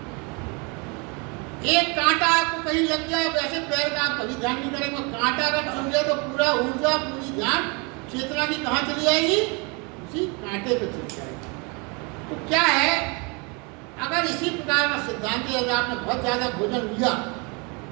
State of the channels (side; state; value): left; quieter; 31.0 dB